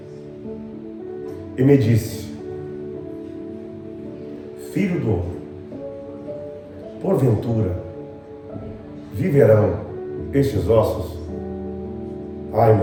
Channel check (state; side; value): identical; both; correlation 1.00